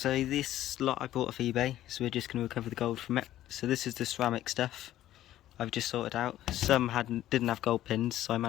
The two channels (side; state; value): right; quieter; 13.3 dB